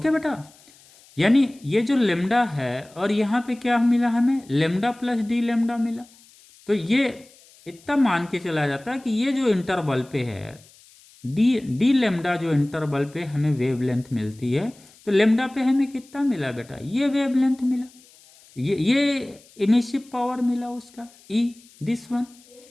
बेटा, यानी ये जो लेमडा है और यहाँ पे क्या मिला हमें, लेमडा प्लस डी लेमडा मिला, तो ये इतना मान के चला जाता है कि ये जो इंटरवल पे है डी लेमडा, जो इंटरवल पे हमें वेवलेंथ मिलती है, तो लेमडा पे हमें कितना मिला बेटा, ये वेवलेंथ मिला, ये इमिसिव पावर मिला उसका ई, दिस वन,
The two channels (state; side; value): noise; left; hiss, 26 dB below the sound